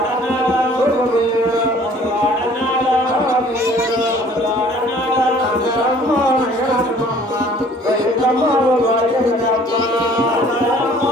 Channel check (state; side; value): normal; both; correlation 0.53